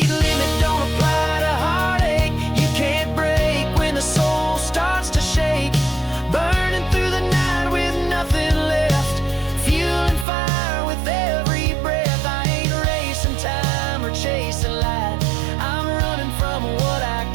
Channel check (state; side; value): drops out; left; at 10.2 s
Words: limit don't apply to heartache. You can't break when the soul starts to shake. Burning through the night with nothing left, fueling fire with every breath. I ain't racing time or chasing light, I'm running from what I